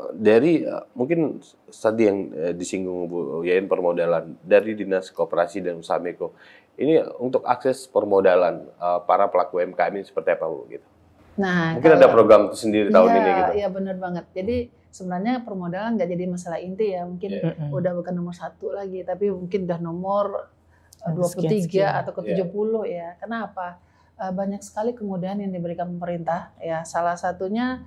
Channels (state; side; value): identical; both; correlation 1.00